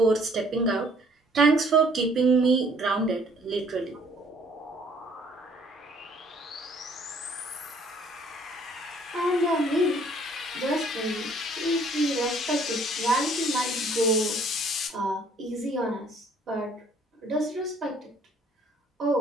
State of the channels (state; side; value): normal; both; correlation 0.60